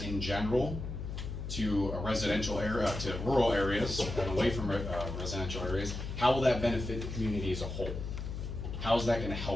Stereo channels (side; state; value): left; noise; hum, 6 dB below the sound